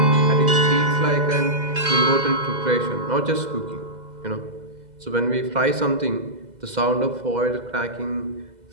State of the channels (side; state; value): left; late; 2.0 ms